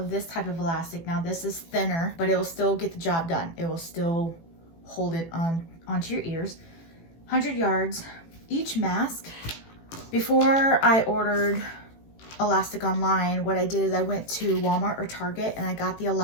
this type of elastic. Now this is thinner, but it will still get the job done. It will still hold it onto your ears. 100 yards. Each mask, before I ordered elastic online, what I did is I went to Walmart or Target and I got the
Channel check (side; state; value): right; late; 18 ms